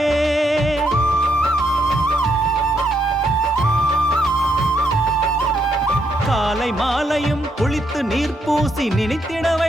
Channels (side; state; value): both; normal; correlation 0.76